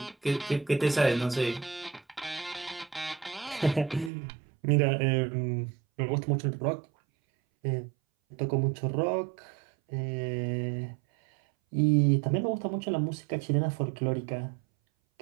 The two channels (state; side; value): drops out; left; at 4.1 s